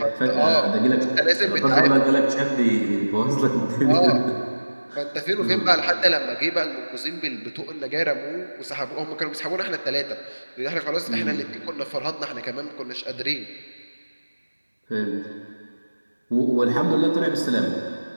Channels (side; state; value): both; inverted; correlation -1.00